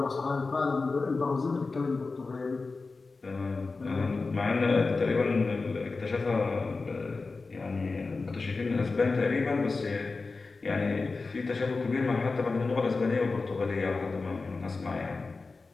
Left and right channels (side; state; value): right; quieter; 3.9 dB